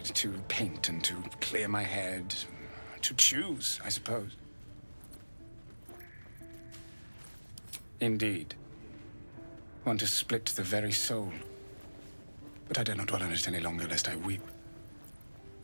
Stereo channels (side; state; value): both; inverted; correlation -1.00